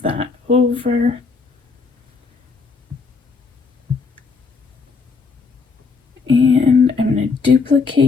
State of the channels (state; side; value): quieter; right; 4.7 dB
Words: that over. And I'm going to